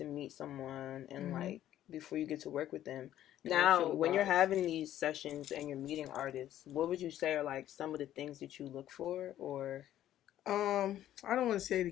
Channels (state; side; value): quieter; right; 12.3 dB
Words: meet someone and, before you get to work with them. Now, when you're having these sessions and you're meeting artists, what would you say are, some of the things that you look for, or? I don't want to say the